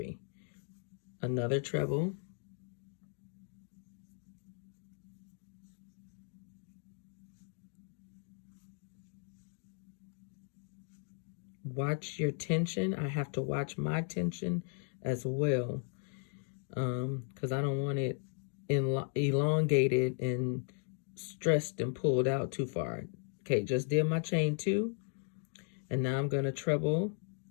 Another treble. Watch your tension. I have to watch my tension as well, because I don't want it elongated and stressed and pulled out too far. Okay, just did my chain 2, and now I'm going to treble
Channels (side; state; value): right; silent; 53 dB below the other